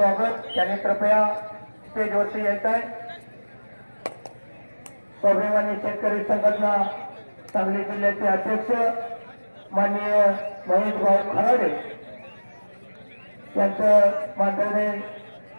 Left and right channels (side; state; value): both; inverted; correlation -1.00